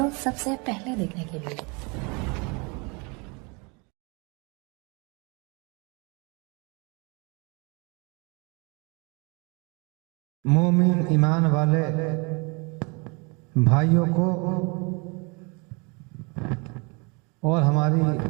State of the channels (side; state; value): left; quieter; 30.6 dB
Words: सबसे पहले देखने के लिए। मोमिन ईमान वाले भाइयों को और हमारी